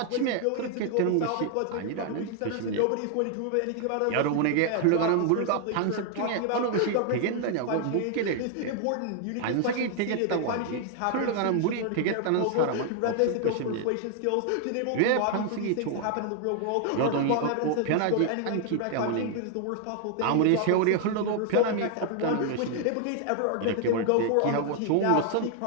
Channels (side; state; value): both; different; correlation 0.00